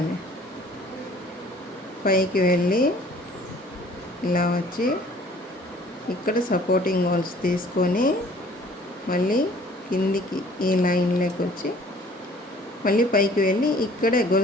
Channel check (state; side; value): normal; both; correlation 0.54